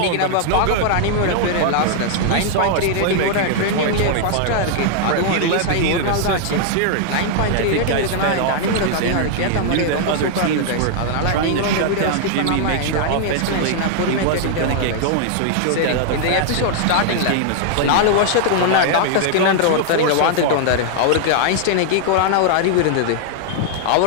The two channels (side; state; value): both; different; correlation -0.01